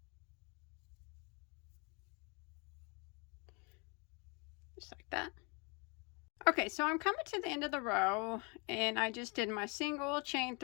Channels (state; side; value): quieter; right; 32.1 dB